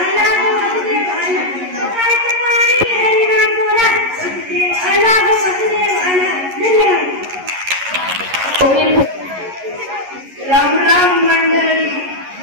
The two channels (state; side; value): late; left; 11 ms